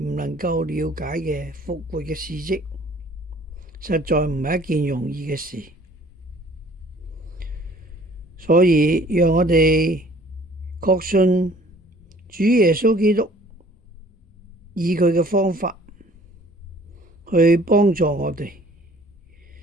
唔能夠了解嘅復活嘅事蹟，實在唔係一件容易嘅事。所以讓我哋確信主耶穌基督以佢嘅方法去幫助我哋，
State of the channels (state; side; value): normal; both; correlation 0.54